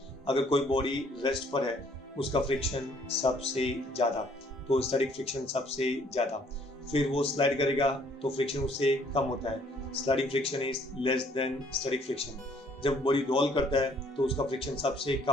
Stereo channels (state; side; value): normal; both; correlation 0.62